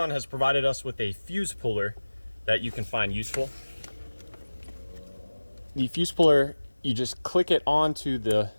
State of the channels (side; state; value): both; inverted; correlation -1.00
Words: has provided us with a fuse puller that you can find useful. The fuse puller, you just click it onto the